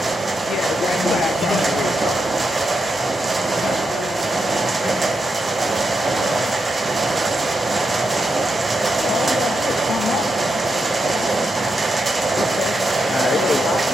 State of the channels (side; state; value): both; normal; correlation 0.85